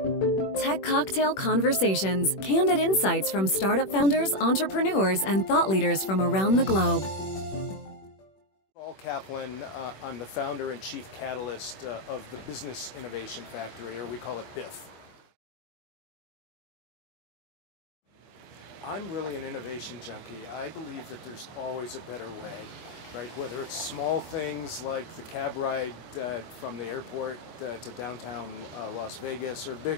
Cocktail Conversations, candid insights from startup founders, entrepreneurs, and thought leaders from around the globe. Saul Kaplan, I'm the founder and chief catalyst of the Business Innovation Factory, or we call it BIF. I'm really an innovation junkie. I believe that there's always a better way, right? Whether it's small things like the cab ride from the airport to downtown Las Vegas, or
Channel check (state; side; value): late; right; 21 ms